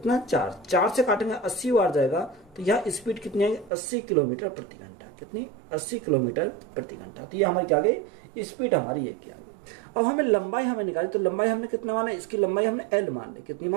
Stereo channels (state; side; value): drops out; left; at 3.7 s